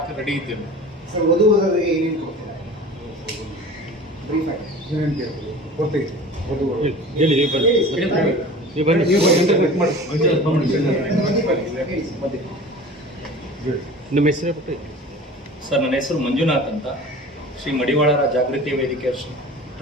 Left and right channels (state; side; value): normal; both; correlation 0.39